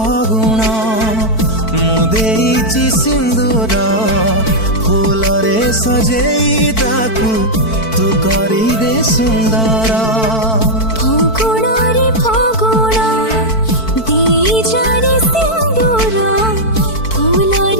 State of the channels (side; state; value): right; late; 4.5 ms